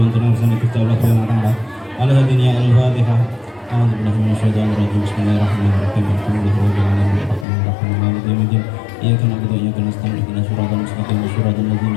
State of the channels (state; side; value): drops out; right; at 7.5 s